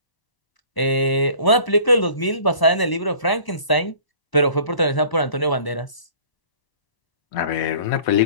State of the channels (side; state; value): right; late; 1.0 ms